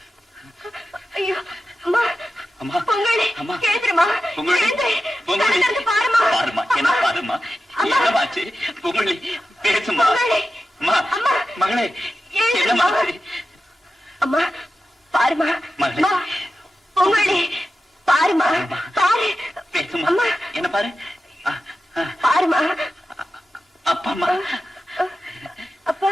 ஐயோ அம்மா அம்மா பொங்கலே அம்மா கேக்குறமா பொங்கலே பொங்கலே பாருமா பாருமா என்ன பாருமா என்னமாச்சு பொங்கலே பேசுமா. அம்மா மகளே என்னமாச்சு அம்மா பாருமா மகளே பொங்கலே பாருமா பாரு பேசுமா என்ன பாரு பாருமா அப்பா அம்மா அப்பா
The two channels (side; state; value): both; normal; correlation 0.92